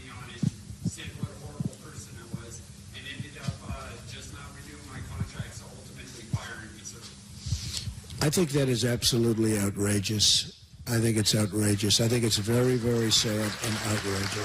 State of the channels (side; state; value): both; identical; correlation 1.00